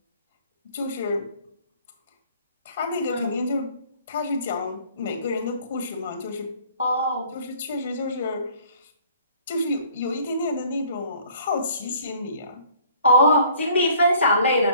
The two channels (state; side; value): inverted; both; correlation -0.56